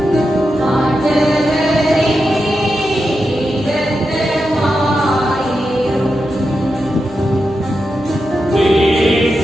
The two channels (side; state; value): right; noise; hum, 18 dB below the sound